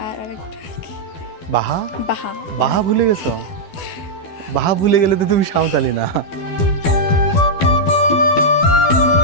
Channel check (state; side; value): late; right; 12 ms